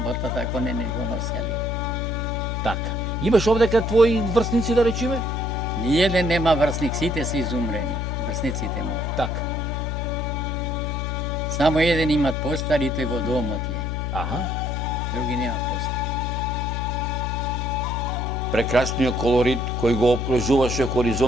ако не го носели. Така. Имаш овдека твои врсници да речеме? Ниеден нема врсник, сите се изумрени, врсниците му. Така. Само еден имат постар и тој во домот е. Аха. Други нема постар. Прекрасниот колорит кој го обкружуваше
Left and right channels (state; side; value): noise; left; hum, 2 dB below the sound